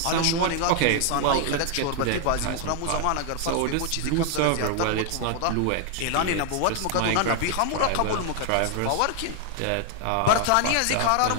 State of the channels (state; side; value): different; both; correlation 0.00